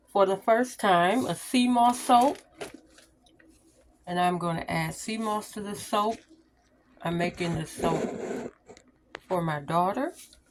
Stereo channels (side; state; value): both; identical; correlation 1.00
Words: for the first time, a sea moss soap. And I'm going to add sea moss to the soap. I'm making this soap for my daughter.